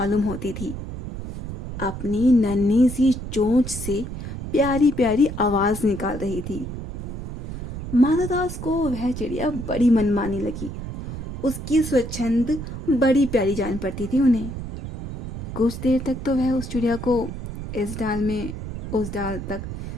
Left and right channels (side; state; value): right; noise; rumble, 8 dB below the sound